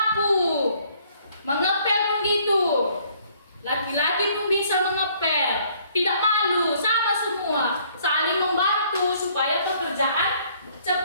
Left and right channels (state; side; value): inverted; both; correlation -0.62